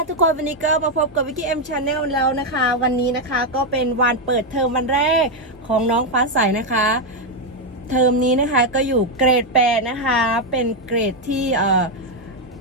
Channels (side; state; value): both; normal; correlation 0.03